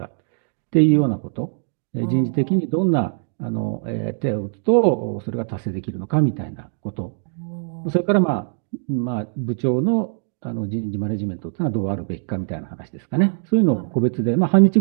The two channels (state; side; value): silent; left; digital silence